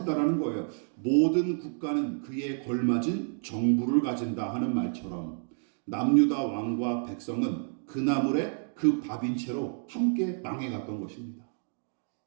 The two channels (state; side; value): silent; left; digital silence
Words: 거예요. 모든 국가는 그에 걸맞은 정부를 가진다 하는 말처럼 남유다 왕과 백성은 그 나물에 그 밥인 채로 함께 망해갔던 것입니다.